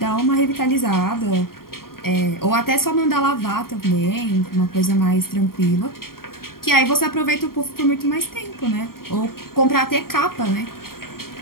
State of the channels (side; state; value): right; late; 0.93 ms